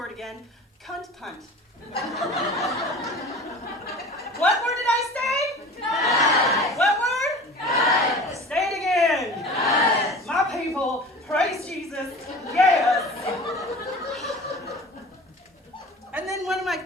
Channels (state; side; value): normal; both; correlation 0.40